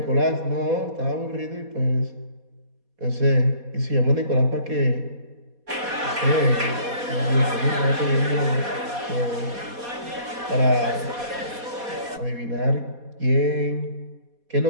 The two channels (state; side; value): late; left; 4.2 ms